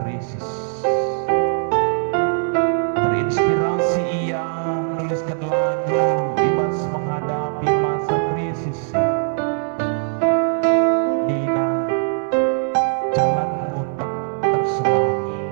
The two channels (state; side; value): silent; left; 65 dB below the other